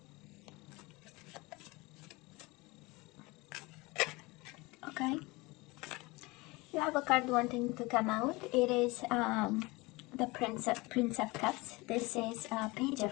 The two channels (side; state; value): right; quieter; 23.7 dB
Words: Okay, you have a card wanting to come out. It is the Prince of Cups. This is Page